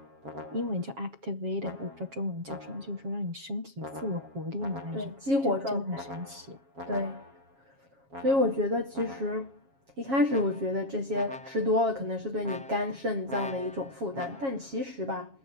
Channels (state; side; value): late; left; 7.3 ms